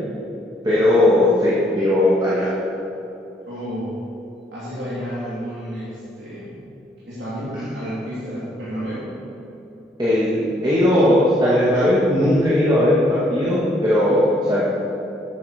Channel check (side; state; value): both; normal; correlation 0.67